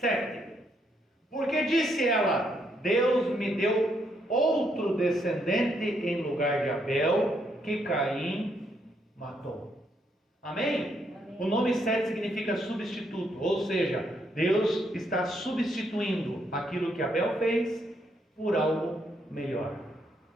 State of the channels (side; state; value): both; normal; correlation 0.75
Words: Porque disse ela: Deus me deu outro descendente em lugar de Abel, que Caim matou. Amém? O nome Sete significa substituto, ou seja, Deus está substituindo aquilo que Abel fez por algo melhor.